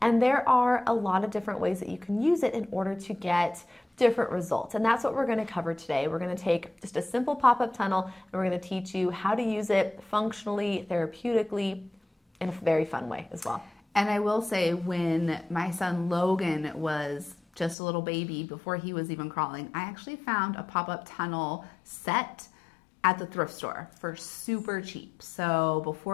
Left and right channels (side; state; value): right; drops out; at 17.8 s